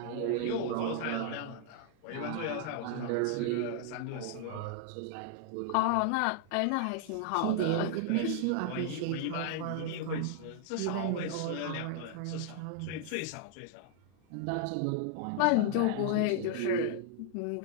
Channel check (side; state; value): both; different; correlation -0.01